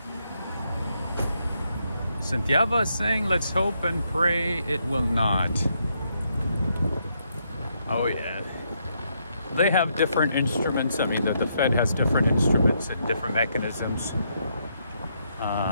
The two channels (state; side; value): inverted; both; correlation -0.77